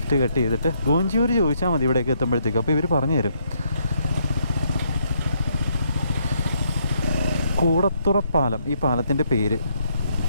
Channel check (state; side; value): inverted; both; correlation -0.72